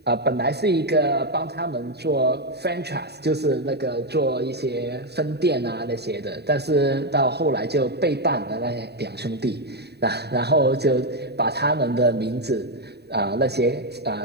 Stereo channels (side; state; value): left; late; 0.48 ms